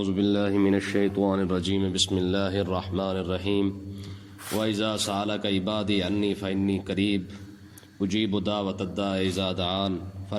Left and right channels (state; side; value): identical; both; correlation 1.00